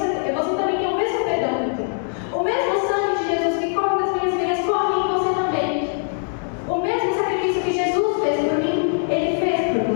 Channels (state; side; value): silent; right; 60 dB below the other